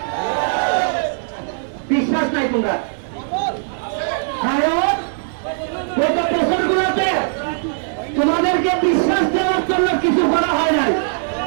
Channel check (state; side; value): silent; left; digital silence